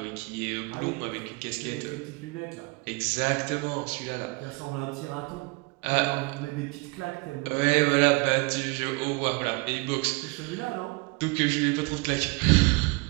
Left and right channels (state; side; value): quieter; left; 28.0 dB